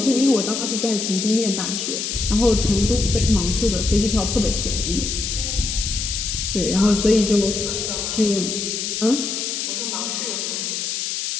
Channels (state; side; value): noise; left; hiss, 3 dB below the sound